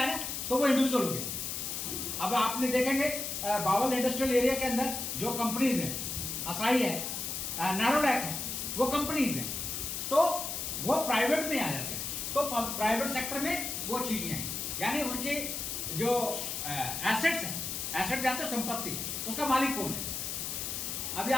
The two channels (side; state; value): left; noise; hiss, 4 dB below the sound